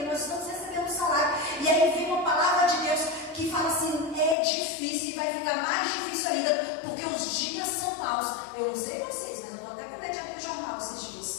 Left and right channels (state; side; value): drops out; right; at 4.4 s